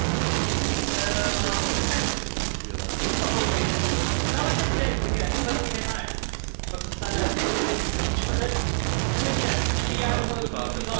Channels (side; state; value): left; silent; digital silence